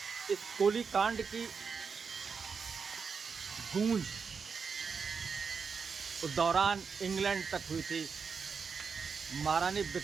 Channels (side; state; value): left; quieter; 5.7 dB